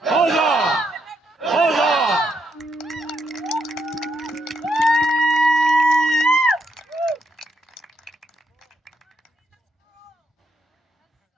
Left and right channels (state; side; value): normal; both; correlation 0.78